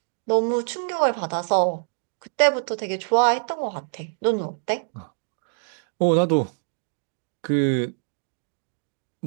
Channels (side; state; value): left; silent; 57 dB below the other